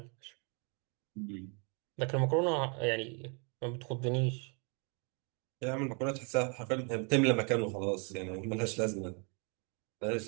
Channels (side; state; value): left; quieter; 35.9 dB